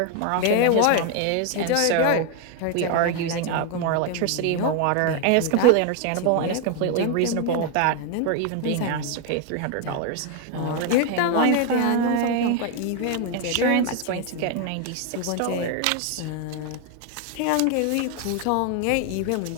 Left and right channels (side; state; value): both; different; correlation 0.01